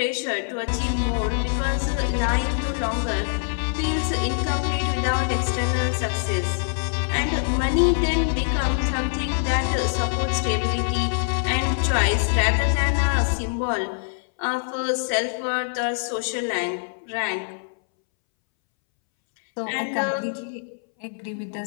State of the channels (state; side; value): silent; right; 63 dB below the other